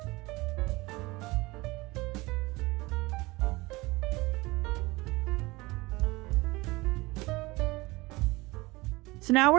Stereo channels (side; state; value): left; quieter; 22.2 dB